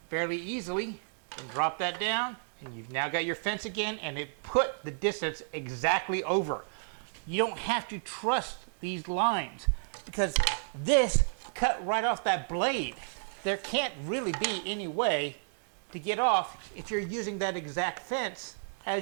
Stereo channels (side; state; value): left; silent; 57 dB below the other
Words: fairly easily, and drop that down, and you've now got your fence again, and it put the distance exactly over. You don't have to trust these lines because this cut right off that blade. There can't really be any way to get off if you're using that exact fence